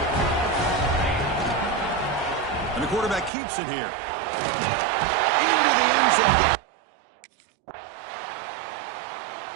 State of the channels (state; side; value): drops out; left; at 3.3 s